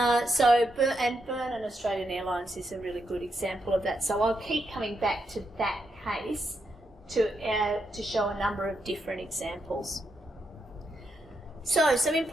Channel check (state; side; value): normal; both; correlation 0.82